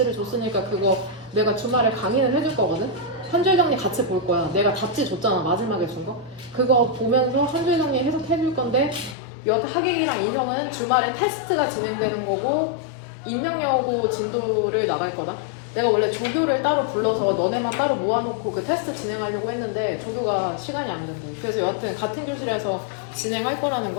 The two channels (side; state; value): right; drops out; at 9.2 s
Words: 줬으니까 그거 내가 주말에 강의는 해줄 거거든. 한 줄 정리 같이 볼 거야. 내가 답지 줬잖아. 마지막에 준 거. 그거 보면서 한 줄 정리 해석해 줄 건데 여태 하객이랑 인형은 주말에 테스트가 진행되는 거고 임명여고 진도를 나갈 거다. 내가 원래 조교를 따로 불러서 너네만 따로 모아놓고 그 테스트 진행하려고 했는데 조교가 시간이 안 된대. 그래서 여하튼 같은 교실에서 진행할 거라는